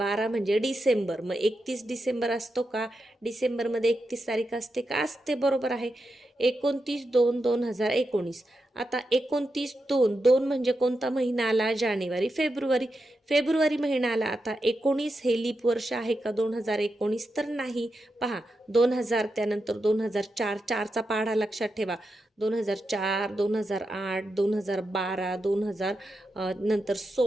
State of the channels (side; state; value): both; normal; correlation 0.87